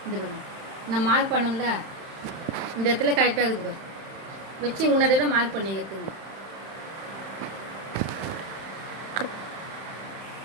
இந்த நம்ம மார்க் பண்ணோம்ல இந்த இடத்துல கரெக்டாக இருக்குது வச்சு உன்னோட மார்க் பண்ணிக்கிறதுங்க.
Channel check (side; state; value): left; late; 31 ms